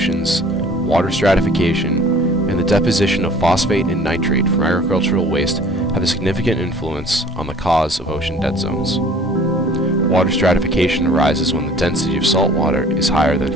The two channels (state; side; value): normal; both; correlation 0.50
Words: water stratification, and the deposition of phosphate and nitrate from agricultural waste have a significant influence on the cause of ocean dead zones. Water stratification arises when the density of salt water is higher than